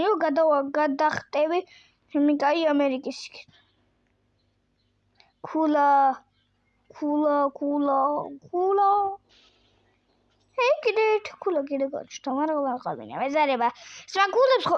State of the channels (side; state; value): both; identical; correlation 1.00